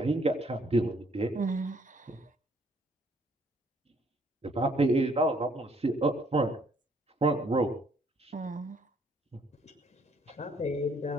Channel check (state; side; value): normal; both; correlation 0.65